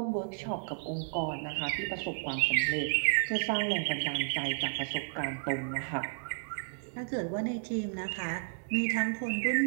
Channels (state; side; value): silent; left; 56 dB below the other